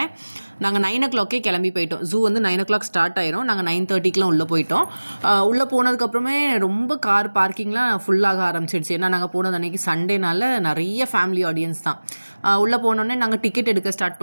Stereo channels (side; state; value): both; inverted; correlation -1.00